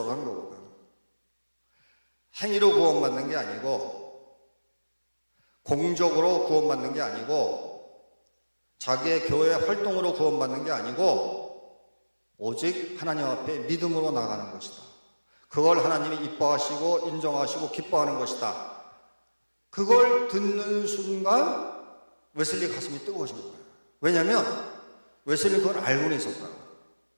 한 거거든. 행위로 구원받는 게 아니고, 공적으로 구원받는 게 아니고, 자기의 교회 활동으로 구원받는 게 아니고, 오직 하나님 앞에 믿음으로 나가는 것이다. 그걸 하나님이 이뻐하시고 인정하시고 기뻐하는 것이다. 그걸 듣는 순간 웨슬리 가슴이 뜨거워진 거예요. 왜냐하면 웨슬리 그걸 알고는 있었다고.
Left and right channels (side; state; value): both; inverted; correlation -1.00